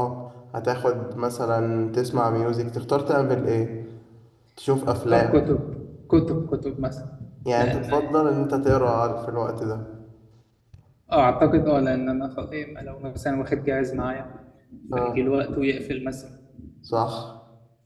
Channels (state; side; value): identical; both; correlation 1.00